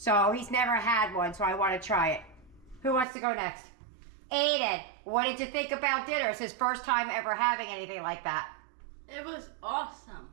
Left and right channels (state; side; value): drops out; left; at 3.1 s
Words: he's never had one, so I want to try it. Who wants to go next? Aiden, what did you think about dinner? It's his first time ever having anything like that. It was awesome.